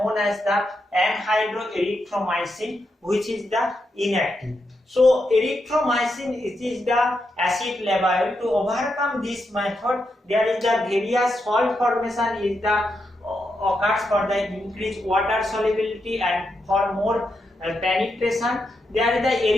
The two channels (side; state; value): both; normal; correlation 0.84